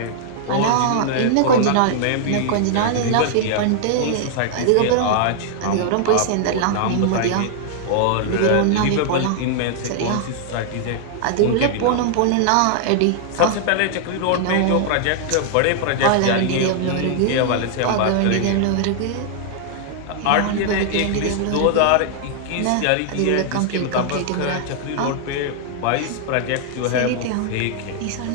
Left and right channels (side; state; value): both; different; correlation 0.00